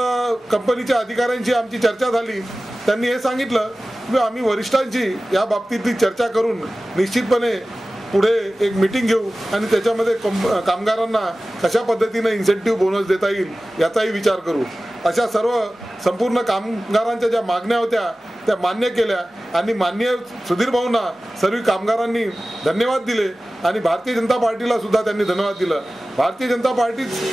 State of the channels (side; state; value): both; normal; correlation 0.96